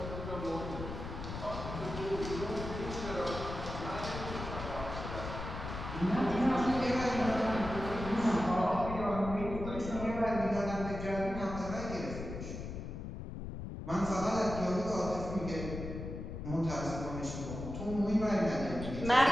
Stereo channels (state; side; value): noise; left; rumble, 7 dB below the sound